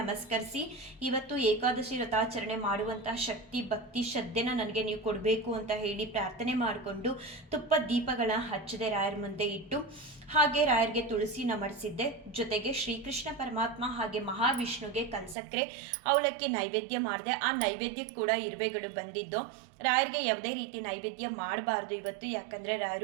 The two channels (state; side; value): drops out; left; at 15.4 s